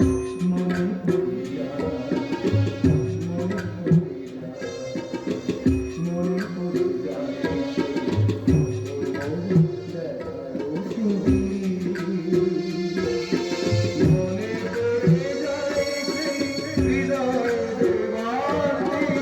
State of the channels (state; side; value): identical; both; correlation 1.00